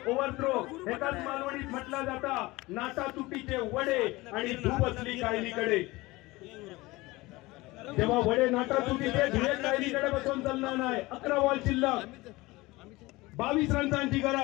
ओव्हरथ्रो एकाच मालवणीत म्हटला जाता नाटा तुटीचे वडे आणि धूप असली कायलीकडे। जेव्हा वडे नाटा तुटीचे धुळे कायलीकडे बसून चालणार नाही। 11 बॉल शिल्लक, 22 रन्सांची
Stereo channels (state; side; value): quieter; right; 21.0 dB